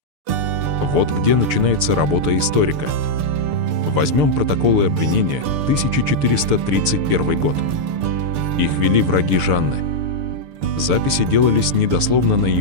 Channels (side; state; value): left; late; 6.8 ms